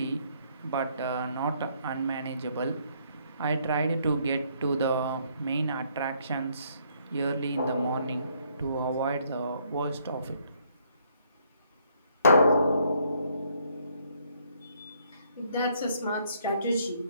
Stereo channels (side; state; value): both; inverted; correlation -0.68